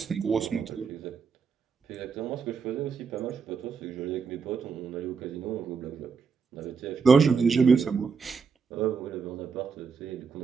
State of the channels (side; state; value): left; quieter; 5.5 dB